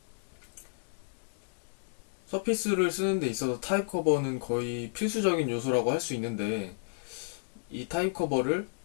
서피스를 쓰는 데 있어서 타입 커버는 거의 필수적인 요소라고 할 수 있는데, 이 타입 커버를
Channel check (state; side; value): silent; right; digital silence